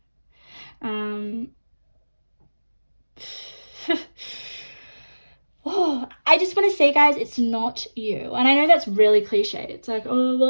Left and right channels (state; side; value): inverted; both; correlation -1.00